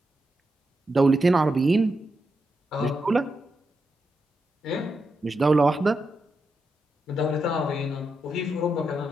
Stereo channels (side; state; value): both; normal; correlation 0.85